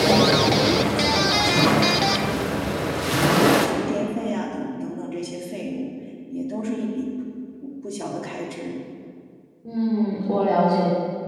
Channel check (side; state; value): both; identical; correlation 1.00